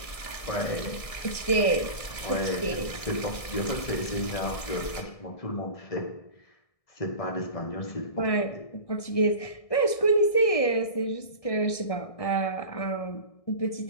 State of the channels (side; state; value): right; late; 1.6 ms